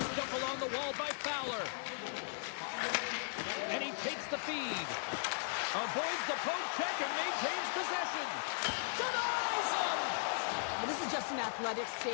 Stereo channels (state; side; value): silent; right; digital silence